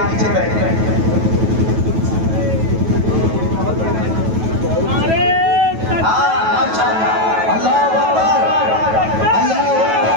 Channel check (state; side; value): late; left; 9.2 ms